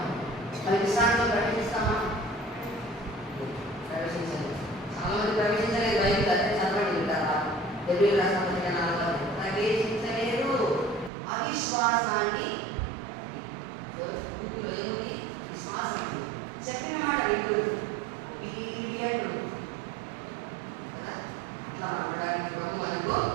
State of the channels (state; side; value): drops out; left; at 11.1 s